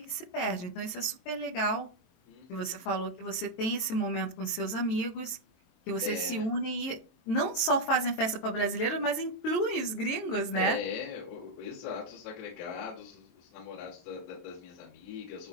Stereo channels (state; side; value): late; right; 22 ms